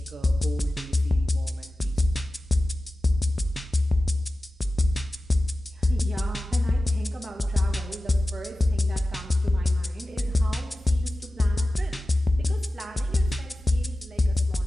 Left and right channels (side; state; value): both; normal; correlation 0.95